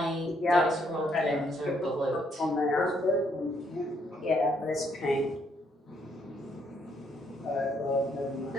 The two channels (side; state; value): both; normal; correlation 0.71